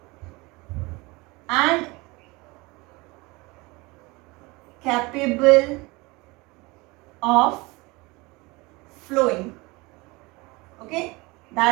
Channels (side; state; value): left; quieter; 24.2 dB